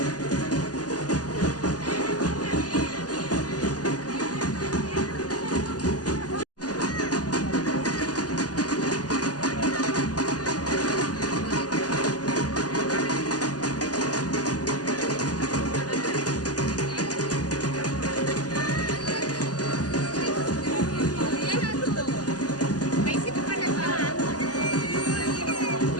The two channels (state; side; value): late; right; 0.68 ms